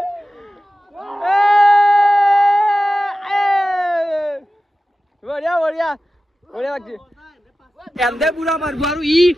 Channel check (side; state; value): both; normal; correlation 0.94